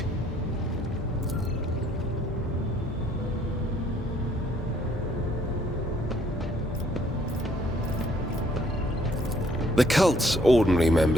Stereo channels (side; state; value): both; normal; correlation 0.64